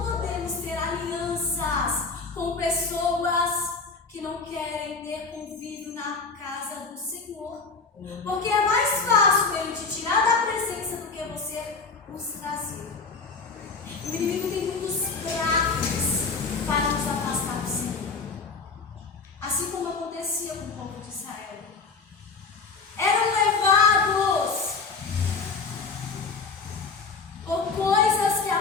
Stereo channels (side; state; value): right; quieter; 4.6 dB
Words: podemos ter alianças com pessoas que não querem ter convívio na casa do Senhor. Porque é mais fácil ele te tirar da presença do que você os trazer. O inimigo tem muitos pratos para nos afastar do Senhor. Assim como acontecia com o povo de Israel. Eram levados por coisas que